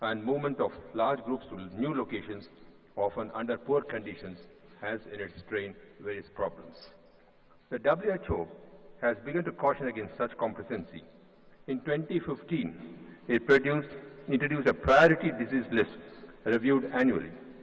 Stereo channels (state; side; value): identical; both; correlation 1.00